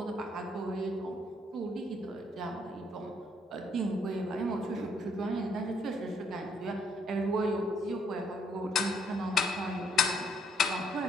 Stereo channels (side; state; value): both; normal; correlation 0.69